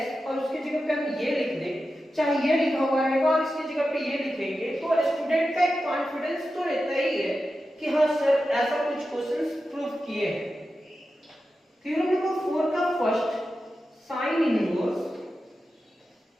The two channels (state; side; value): normal; both; correlation 0.91